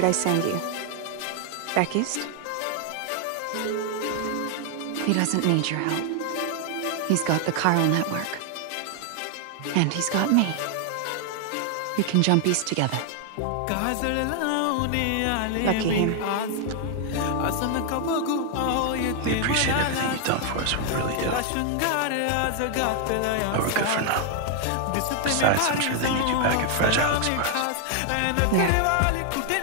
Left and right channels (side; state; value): both; different; correlation 0.00